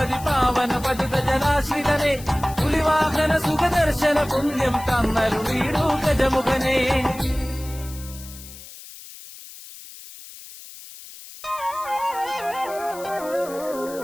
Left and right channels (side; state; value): left; noise; hiss, 16 dB below the sound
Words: പാവന പതിത ജനാശ്രിതനെ പുലിവാഹന സുഖദർശന പുണ്യം തന്നരുളീടു ഗജമുഖനെ